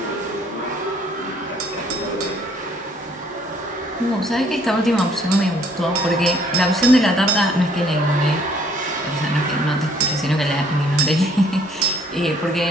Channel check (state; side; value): normal; both; correlation 0.62